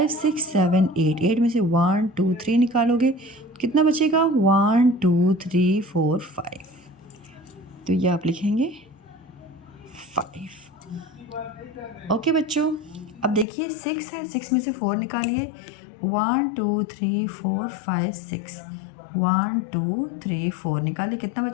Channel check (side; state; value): right; drops out; at 13.5 s